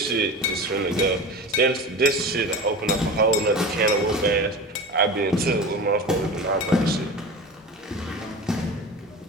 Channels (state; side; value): normal; both; correlation 0.31